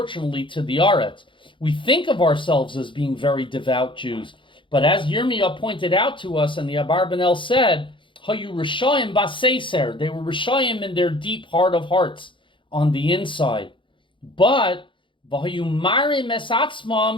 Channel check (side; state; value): right; late; 0.24 ms